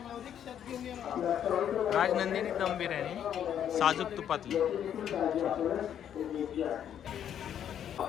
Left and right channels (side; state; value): right; quieter; 9.6 dB